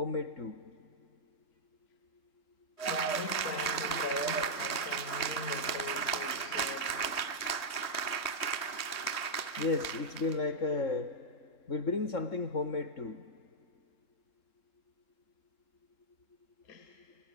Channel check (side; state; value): right; late; 3.2 ms